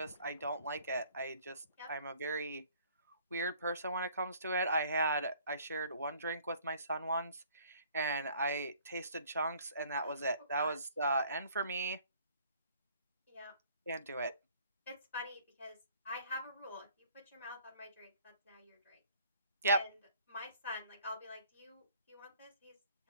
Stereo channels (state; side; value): inverted; both; correlation -0.57